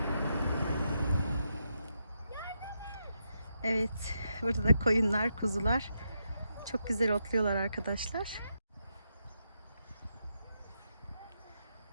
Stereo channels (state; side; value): inverted; both; correlation -0.83